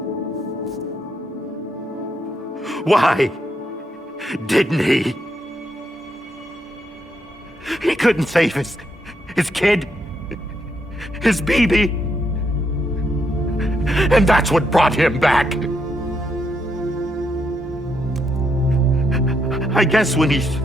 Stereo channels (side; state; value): both; normal; correlation 0.78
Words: Why didn't he? He couldn't save his kid, his baby. And that's what brought him back. I guess when he